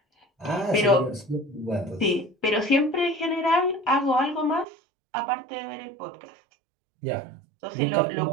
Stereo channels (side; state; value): left; drops out; at 4.7 s